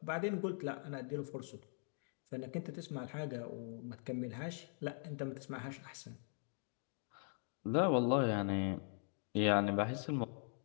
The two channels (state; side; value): silent; right; 50 dB below the other